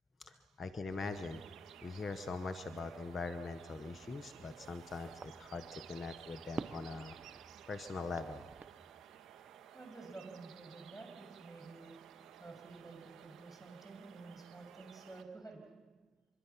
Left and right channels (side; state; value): both; normal; correlation 0.80